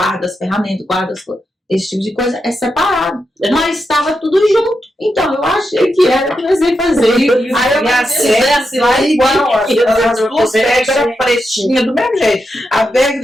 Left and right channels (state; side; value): normal; both; correlation 0.86